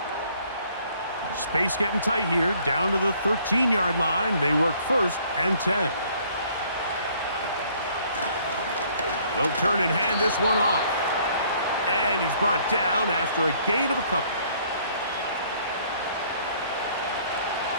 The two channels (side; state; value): both; inverted; correlation -0.61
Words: Space getting tight here, down to the 13-yard line. They work 1st and 10. They'll turn and hand this one off. And he's brought down after a gain of a couple.